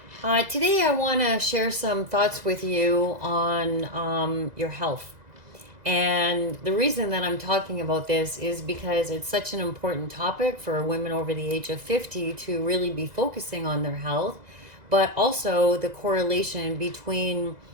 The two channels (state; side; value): late; left; 2.0 ms